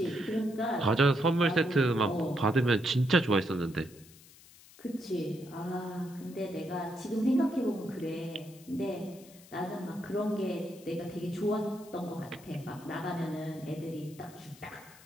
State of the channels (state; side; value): noise; left; hiss, 22 dB below the sound